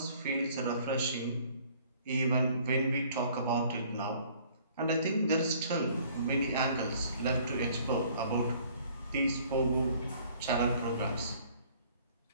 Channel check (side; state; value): both; inverted; correlation -0.57